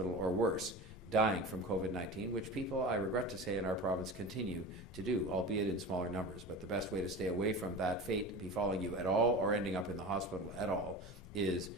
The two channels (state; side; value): normal; both; correlation 0.31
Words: or worse, dying from COVID-19, which people, I regret to say, in our province continue to do, albeit in smaller numbers. But the best way to stay away from that fate befalling you at all or ending up in the hospital at all is